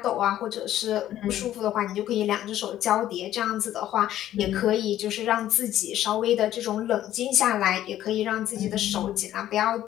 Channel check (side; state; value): right; quieter; 12.6 dB